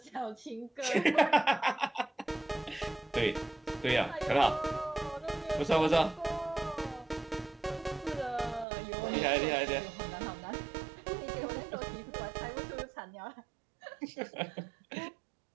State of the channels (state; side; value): drops out; left; at 8.7 s